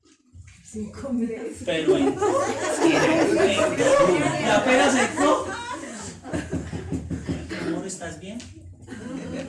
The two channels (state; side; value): identical; both; correlation 1.00